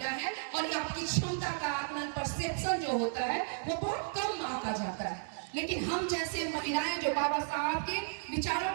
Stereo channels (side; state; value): left; silent; digital silence